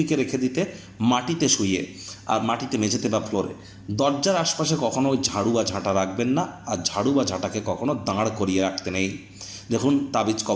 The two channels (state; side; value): identical; both; correlation 1.00